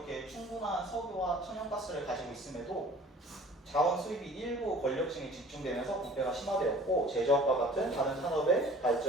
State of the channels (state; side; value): normal; both; correlation 0.47